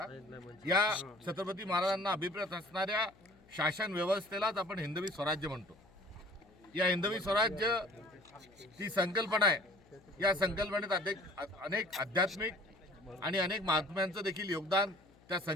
या छत्रपती महाराजांना अभिप्रेत असणाऱ्या शासन व्यवस्थेलाच आपण हिंदवी स्वराज्य म्हणतो। या हिंदवी स्वराज्य ती संकल्पना आहे। या संकल्पनेत अनेक आध्यात्मिक आणि अनेक महात्म्यांचं देखील योगदान त्या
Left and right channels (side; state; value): left; noise; hum, 27 dB below the sound